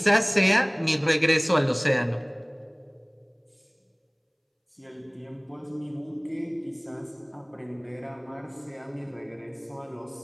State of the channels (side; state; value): both; identical; correlation 1.00